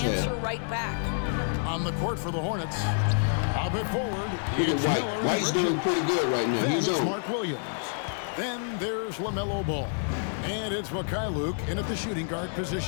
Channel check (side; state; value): right; silent; 59 dB below the other